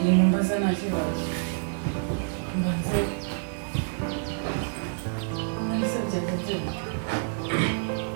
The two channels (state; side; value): silent; left; 60 dB below the other